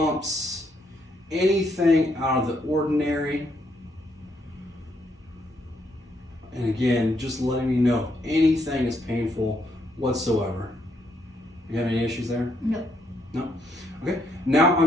anything out of the ordinary. And again, just letting me know if anything is painful whatsoever. You have any issues there? No. No? Okay. Now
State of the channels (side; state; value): both; normal; correlation 0.75